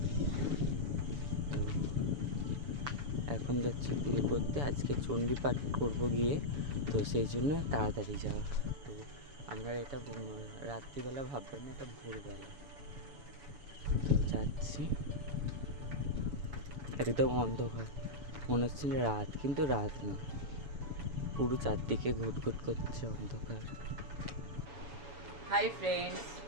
তো এখন যাচ্ছি পুজো করতে, আজকে চণ্ডী পাঠ করবো গিয়ে, তো সেই জন্য তাড়াতাড়ি যাওয়া। তো আমরা এটা রাত্রিবেলা ভাববেন না, এটা ভোরবেলা। তো যাচ্ছি, একদম অন্ধকার, মনে হচ্ছে রাত, কিন্তু রাত নয়, পুরো চারদিকে ঘুটঘুট করছে অন্ধকার। Hi friends,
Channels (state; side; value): late; left; 7.1 ms